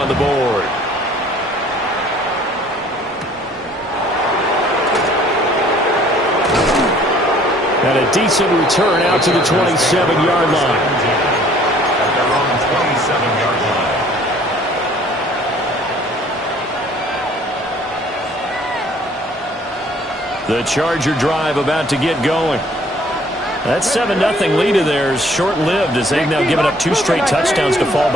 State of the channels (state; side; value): normal; both; correlation 0.57